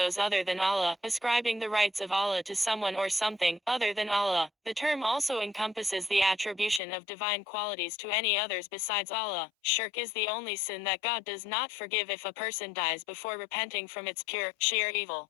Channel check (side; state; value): right; drops out; at 6.8 s